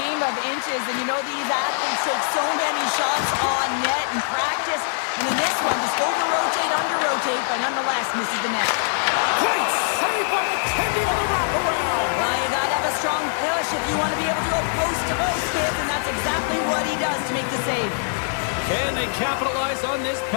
of inches, and you know these athletes take so many shots on net in practice. And in this one, just over-rotate, under-rotate, but nonetheless misses the net. Great save by McKenzie on the wraparound. Well, you gotta have a strong push if you want to be able to go post-to-post, kids, and that's exactly what he does to make the save. Can they capitalize on this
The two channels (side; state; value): right; silent; digital silence